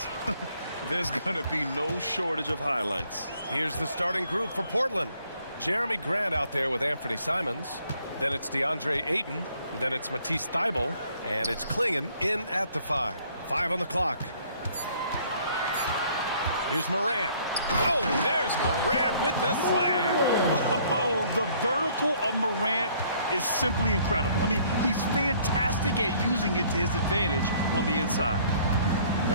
there's going to be no shortage of highlights. Here's the starting group for Portland. Jeremy Grant out there with Anthony Simons. Then it's DeAndre Ayton. Then it's Matisse Thybulle. And it's Klingon in at the 5. 5 on the clock. Here's Morant. Oh, there's Morant with the slam. Oh, the vertical of Morant is simply incredible. I mean, he's fantastic at using it to his advantage on the inside.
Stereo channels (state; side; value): inverted; both; correlation -0.61